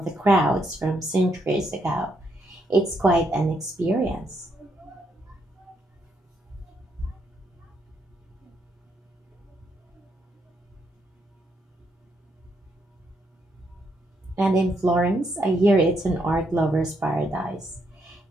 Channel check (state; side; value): normal; both; correlation 0.77